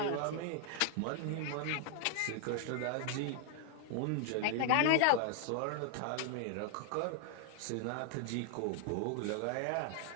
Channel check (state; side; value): different; both; correlation 0.00